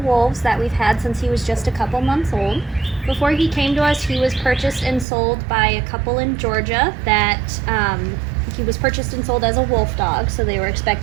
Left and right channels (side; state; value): left; drops out; at 5.1 s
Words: wolves that we've had since he was just a couple months old. Before he came to us, he was purchased and sold by a couple in Georgia that he was purchased and sold as a wolf dog, so they were